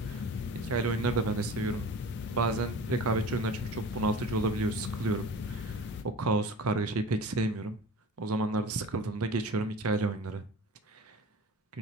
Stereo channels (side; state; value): both; normal; correlation 0.38